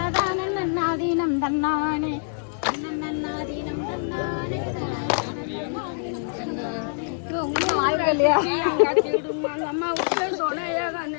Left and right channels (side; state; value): right; silent; 62 dB below the other